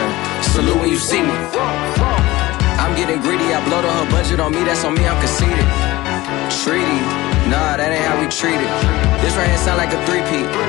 salute when you see me. I'm getting greedy, I blow the whole budget on me, that's on me, I'm conceited. Treaty, nah, that ain't how we treat it. This right here sound like a three-peat.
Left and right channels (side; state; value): right; quieter; 18.9 dB